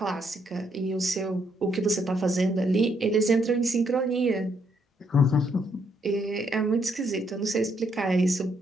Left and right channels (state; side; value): normal; both; correlation 0.73